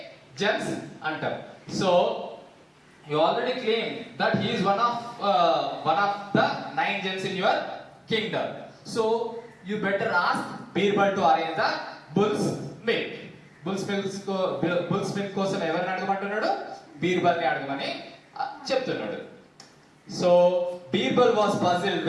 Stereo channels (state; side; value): identical; both; correlation 1.00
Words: Gems అంటాం. So you already claimed that he is one of the 9 gems in your kingdom. So you better ask Birbal to arrange the bull's milk. Bull's milk కోసం ఎవరిని అడగమంటున్నాడు? బీర్బల్ని అడగమని చెప్తున్నాడు. So Birbal was puzzled